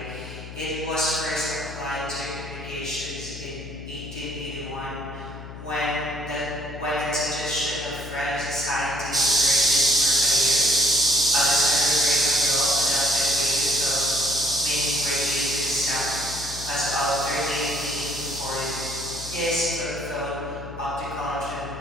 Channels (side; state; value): left; noise; hum, 12 dB below the sound